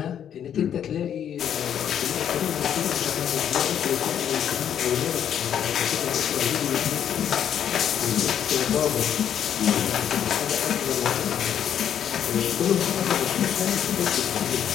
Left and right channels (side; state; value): right; quieter; 9.3 dB